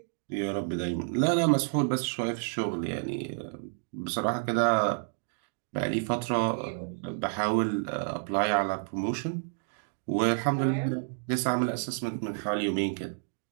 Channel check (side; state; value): left; silent; digital silence